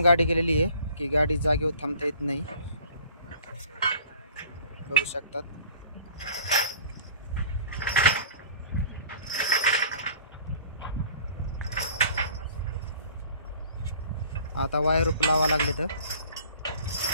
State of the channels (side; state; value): both; inverted; correlation -0.48